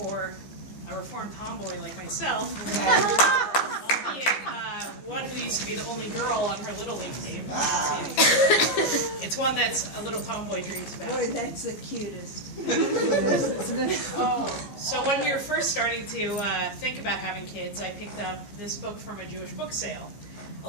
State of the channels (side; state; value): right; late; 14 ms